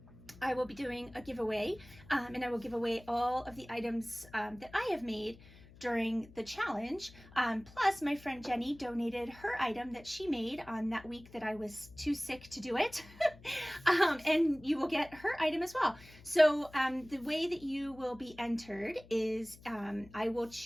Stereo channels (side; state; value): left; noise; hum, 21 dB below the sound